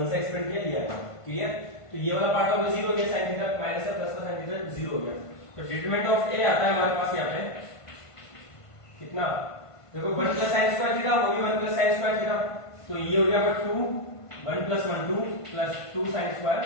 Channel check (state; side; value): late; right; 1.5 ms